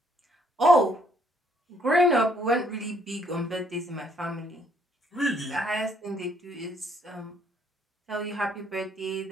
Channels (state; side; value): normal; both; correlation 0.67